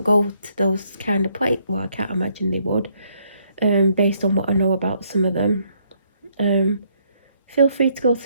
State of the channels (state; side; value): inverted; both; correlation -0.71